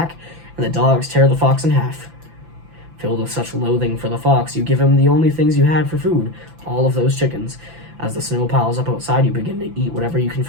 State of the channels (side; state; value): left; late; 5.9 ms